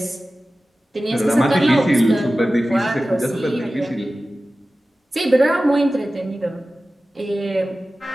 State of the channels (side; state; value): both; normal; correlation 0.95